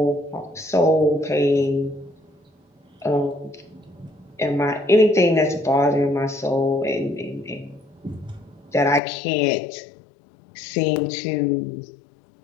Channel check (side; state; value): right; drops out; at 9.0 s